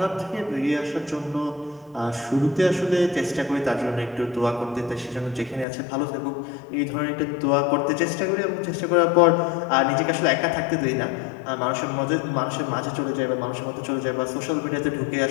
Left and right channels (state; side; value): drops out; right; at 5.7 s